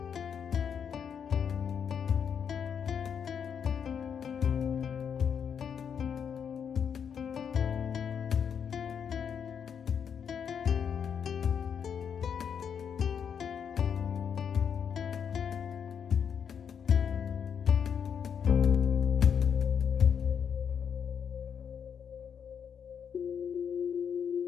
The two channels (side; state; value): right; quieter; 7.5 dB